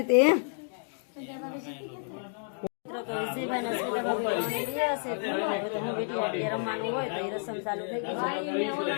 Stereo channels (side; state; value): right; silent; 58 dB below the other